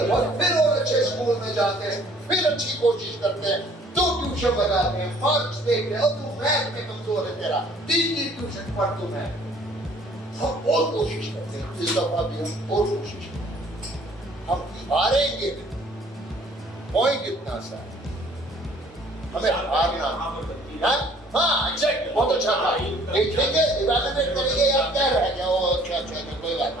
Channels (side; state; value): both; normal; correlation 0.57